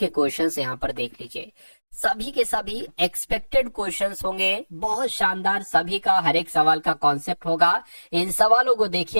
क्वेश्चंस यहाँ पर देख लीजिए। सभी के सभी एक्सपेक्टेड क्वेश्चंस होंगे, बहुत शानदार। सभी का हर एक सवाल का कॉन्सेप्ट होगा। इन सवालों को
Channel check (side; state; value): both; inverted; correlation -1.00